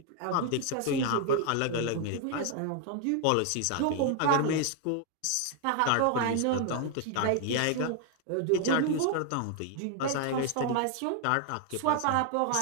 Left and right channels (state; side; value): different; both; correlation 0.00